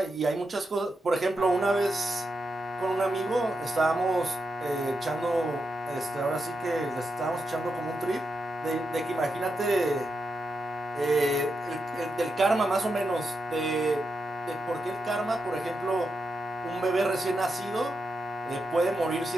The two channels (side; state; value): both; normal; correlation 0.86